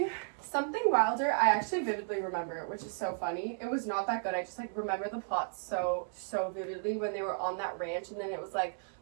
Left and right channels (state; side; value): silent; left; 55 dB below the other